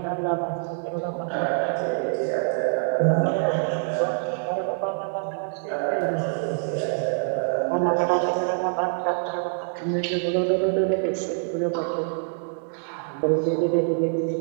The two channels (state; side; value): silent; left; 62 dB below the other